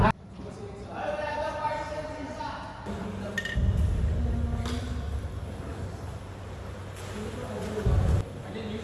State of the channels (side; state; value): both; identical; correlation 1.00